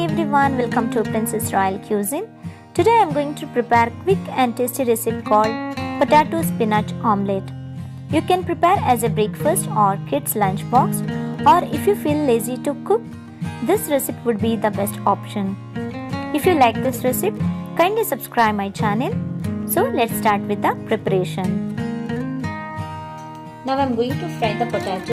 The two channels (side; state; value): both; identical; correlation 1.00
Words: everyone, welcome to Princess Royal Cuisine. Today I am going to prepare quick and tasty recipe called potato spinach omelette. You can prepare as a breakfast or kids lunchbox, or if you feel lazy to cook, this recipe would be the best option. If you like this recipe, kindly subscribe my channel. So let's start with the preparation. Now I am going to fry the